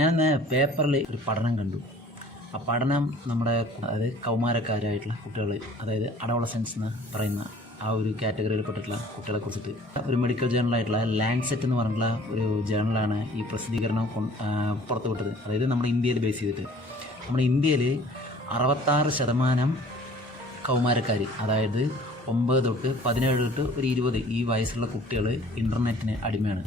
പേപ്പറിൽ ഒരു പഠനം കണ്ടു. ആ പഠനം നമ്മുടെ അതായത് കൗമാരക്കാരായിട്ടുള്ള കുട്ടികൾ, അതായത് അഡോളസൻസ് എന്ന് പറയുന്ന ആ ഒരു കാറ്റഗറിയിൽ പെട്ടിട്ടുള്ള കുട്ടികളെ കുറിച്ചിട്ട് ഒരു മെഡിക്കൽ ജേണലായിട്ടുള്ള ലാൻസെറ്റ് എന്ന് പറഞ്ഞിട്ടുള്ള ഒരു ജേണലാണ് ഈ പ്രസിദ്ധീകരണം പുറത്തുവിട്ടത്. അതായത് നമ്മുടെ ഇന്ത്യയിൽ ബേസ് ചെയ്തിട്ട് നമ്മുടെ ഇന്ത്യയിൽ 66% കൗമാരക്കാർ, അതായത് 9 തൊട്ട് 17 തൊട്ട് ഒരു 20 ഈ വയസ്സുള്ള കുട്ടികൾ ഇൻ്റർനെറ്റിന് അടിമയാണ്.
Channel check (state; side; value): normal; both; correlation 0.51